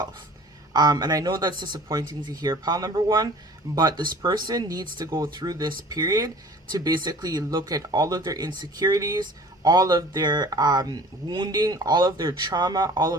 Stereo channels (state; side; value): normal; both; correlation 0.46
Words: And I know that's disappointing to hear, pile number 1, but this person needs to go through this period to basically look at all of their insecurities, all of their wounding, all of their trauma, all